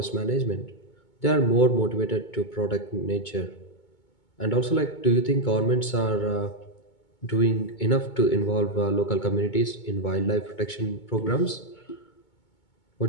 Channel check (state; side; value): late; right; 2.2 ms